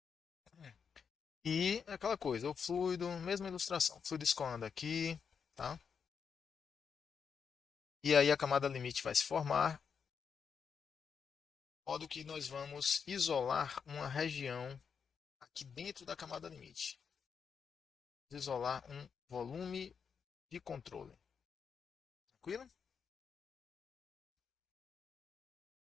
E aquela coisa, o fluido, mesma ilustração. O fluido escoando aqui, tá? E aí a camada limite vai se formar, de modo que nós vamos isolar uma região aqui dentro da camada limite. Isolar um volume de controle. Tranquilo?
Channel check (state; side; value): quieter; right; 6.5 dB